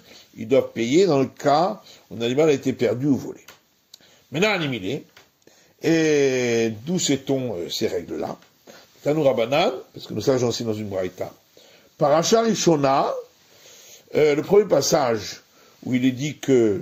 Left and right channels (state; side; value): identical; both; correlation 1.00